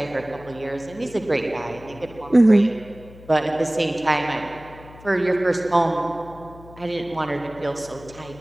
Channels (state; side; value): noise; left; hum, 20 dB below the sound